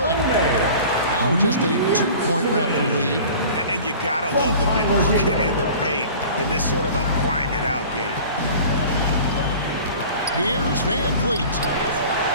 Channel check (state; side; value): inverted; both; correlation -0.42